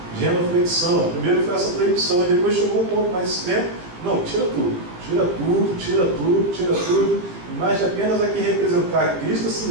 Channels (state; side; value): late; left; 17 ms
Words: Genoflexão. Primeiro foi essa proibição, e depois chegou um ponto mais extremo. Não, tira tudo. Imagem apenas a que representar Cristo,